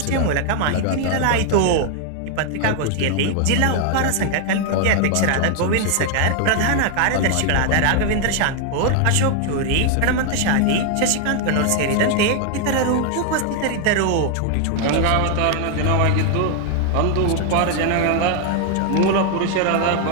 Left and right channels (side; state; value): both; different; correlation 0.00